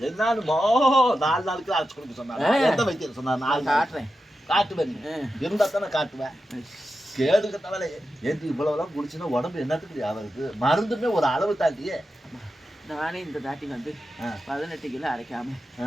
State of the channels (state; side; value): normal; both; correlation 0.90